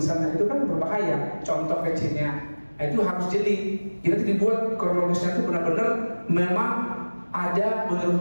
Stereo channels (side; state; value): both; inverted; correlation -1.00